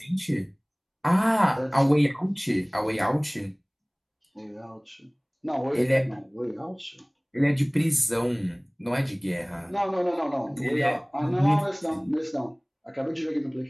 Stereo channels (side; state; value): both; identical; correlation 1.00